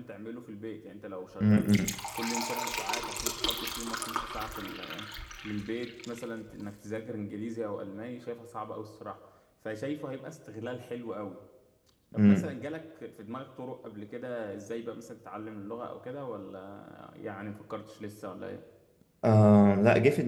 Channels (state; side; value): identical; both; correlation 1.00